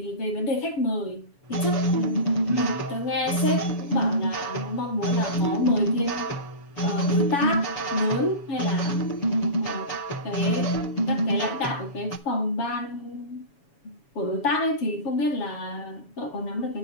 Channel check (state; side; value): late; right; 7.1 ms